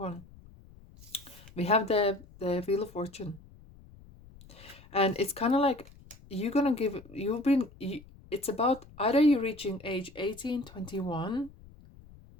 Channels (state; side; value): noise; left; rumble, 22 dB below the sound